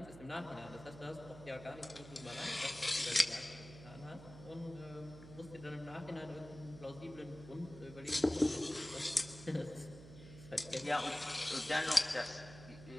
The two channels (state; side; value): noise; right; hum, 16 dB below the sound